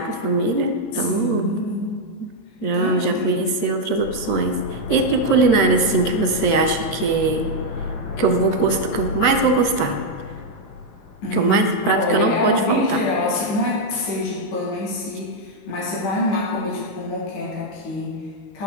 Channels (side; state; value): right; late; 19 ms